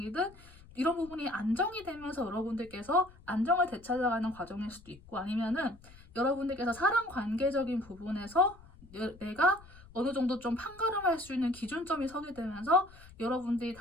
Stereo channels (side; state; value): left; noise; rumble, 22 dB below the sound